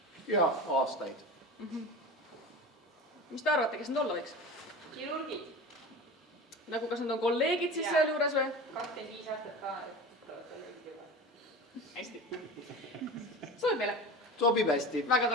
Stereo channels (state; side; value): normal; both; correlation 0.32